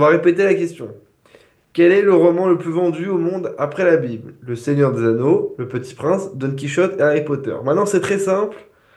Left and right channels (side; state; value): both; identical; correlation 1.00